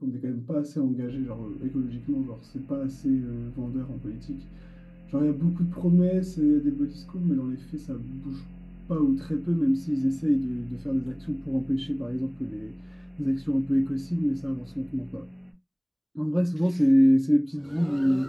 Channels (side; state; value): both; identical; correlation 1.00